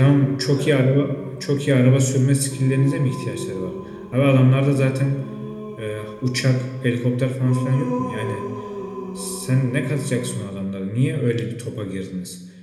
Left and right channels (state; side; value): identical; both; correlation 1.00